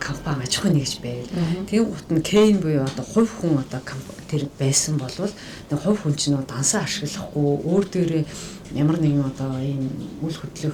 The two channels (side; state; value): both; identical; correlation 1.00